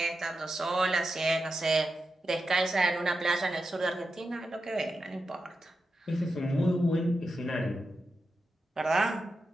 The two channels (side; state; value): both; normal; correlation 0.89